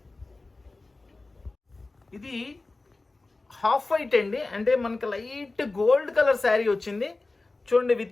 ఇది హాఫ్ వైట్ అండి, అంటే మనకి లైట్ గోల్డ్ కలర్ శారీ వచ్చింది. చూడండి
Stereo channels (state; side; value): quieter; right; 3.3 dB